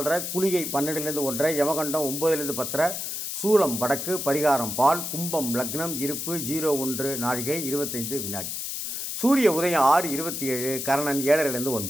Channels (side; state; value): left; noise; hiss, 4 dB below the sound